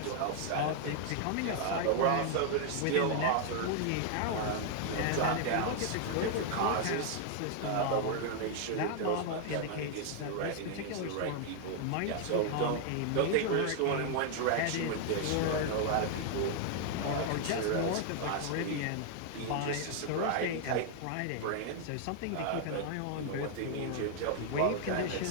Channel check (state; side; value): different; both; correlation 0.00